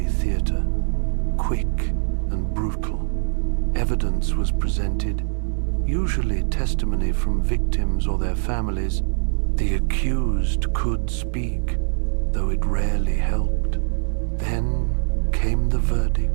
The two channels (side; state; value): left; silent; 64 dB below the other